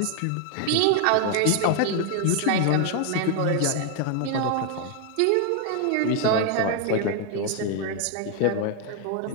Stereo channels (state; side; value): different; both; correlation 0.01